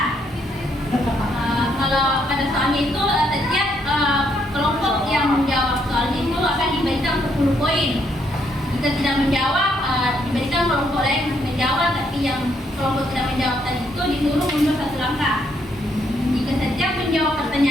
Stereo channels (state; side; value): normal; both; correlation 0.73